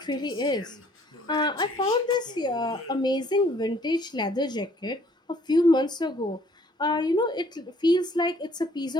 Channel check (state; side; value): normal; both; correlation 0.61